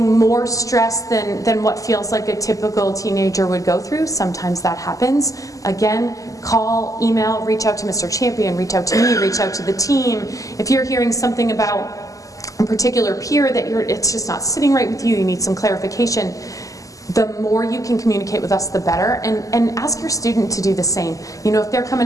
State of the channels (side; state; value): right; late; 0.16 ms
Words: more stress than what feels like a typical teenager would go through. Sometimes that happens. Again, call, email, reach out to Mr. Champion, reach out to me, reach out to the team. If you're hearing something about a particular peer that it's just not sitting right with you, you need some clarification, the more you can communicate with us, the better. And ask your student to do the same. You know, if they're